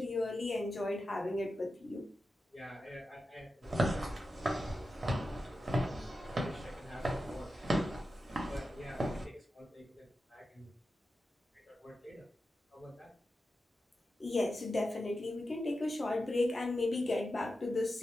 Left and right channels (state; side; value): normal; both; correlation 0.91